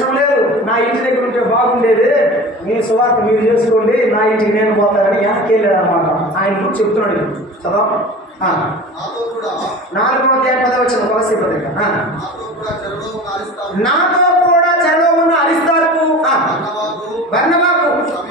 లేదు, నా ఇంటి దగ్గర ఉంటే బాగుండేది, మీ సువార్త మీరు చేసుకోండి, నా ఇంటికి నేను పోతానని వెనక్కి వెళ్ళాడు అనమాట. ఆయన గురించి చెప్తున్నాడు. చదవ 4వ అధ్యాయం 10వ వచనం కొలస్సీ పత్రిక. నాతో కూడా చెరలో ఉన్న అరిస్తార్కు, బర్నబాకు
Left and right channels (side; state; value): both; normal; correlation 0.36